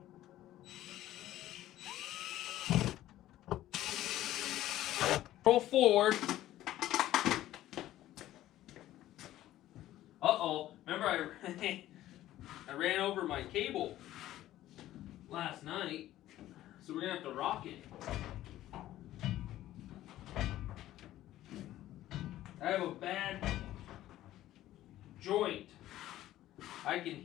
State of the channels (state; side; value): quieter; right; 14.1 dB